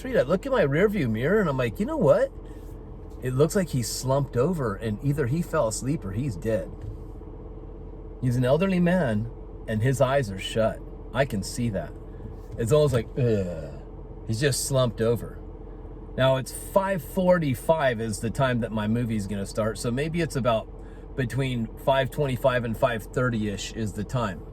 I look in my rearview mirror and I'm like, you know what? It looks like he's slumped over and either he fell asleep or he's dead. He's an elderly man and his eyes are shut. I can see that. It's almost like, ugh. He's just slumped over. Now it's 5:45 is the time that my movie's gonna start. So maybe it's about between 5:25 and 5:30-ish is the time.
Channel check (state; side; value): identical; both; correlation 1.00